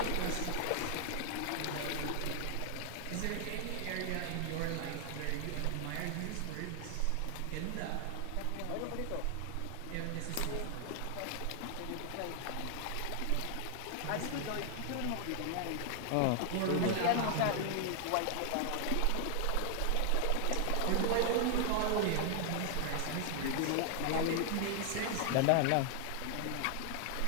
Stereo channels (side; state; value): both; different; correlation 0.00